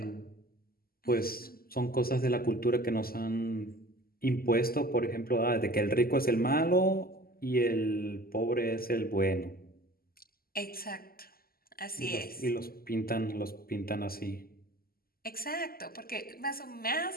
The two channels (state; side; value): late; right; 0.43 ms